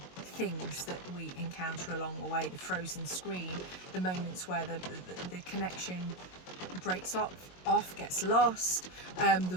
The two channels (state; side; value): late; right; 22 ms